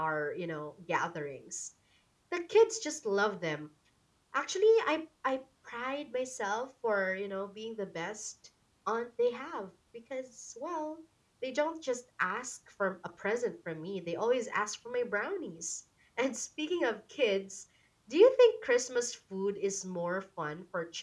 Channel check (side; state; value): both; identical; correlation 1.00